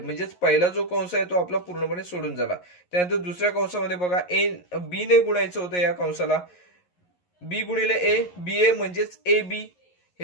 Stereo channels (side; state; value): right; late; 11 ms